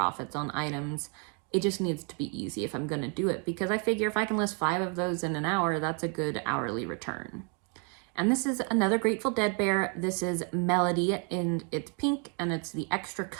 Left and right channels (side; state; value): left; quieter; 37.7 dB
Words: on items. It just needs to be easy if I'm going to do it, because I figure if I can list 5 of those in an hour, that's a good hourly return. And this is another Grateful Dead bear. This is Melody, and it's pink, and it's the extra